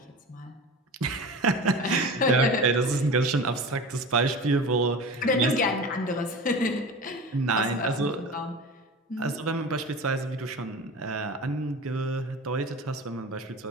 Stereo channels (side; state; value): both; normal; correlation 0.33